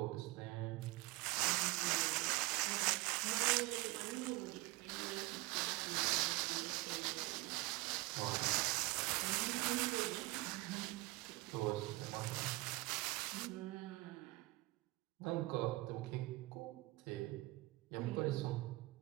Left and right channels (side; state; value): left; quieter; 22.0 dB